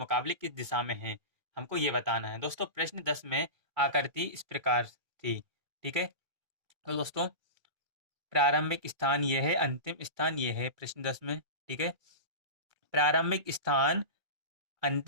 किस दिशा में है, हमको ये बताना है। दोस्तों, प्रश्न 10 में आकृति इस प्रकार थी। ठीक है, तो दोस्तों प्रारंभिक स्थान ये है, अंतिम स्थान ये है प्रश्न 10 में। ठीक है, प्रारंभिक स्थान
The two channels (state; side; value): late; left; 2.3 ms